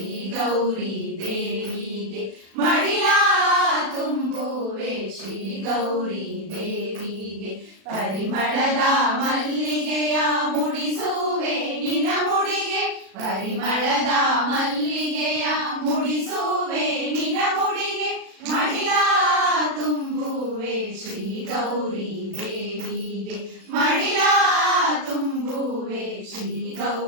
ಗೌರಿ ದೇವಿಗೆ ಮಡಿಲ ತುಂಬುವೆ ಶ್ರೀ ಗೌರಿ ದೇವಿಗೆ ಪರಿಮಳದ ಮಲ್ಲಿಗೆಯ ಮುಡಿಸುವೆ ನಿನ ಮುಡಿಗೆ ಪರಿಮಳದ ಮಲ್ಲಿಗೆಯ ಮುಡಿಸುವೆ ನಿನ ಮುಡಿಗೆ ಮಡಿಲ ತುಂಬುವೆ ಶ್ರೀ ಗೌರಿ ದೇವಿಗೆ ಮಡಿಲ ತುಂಬುವೆ ಶ್ರೀ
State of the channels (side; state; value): left; late; 36 ms